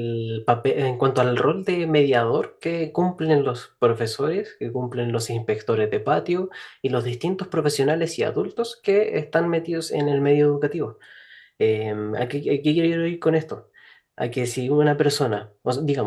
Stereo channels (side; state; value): both; identical; correlation 1.00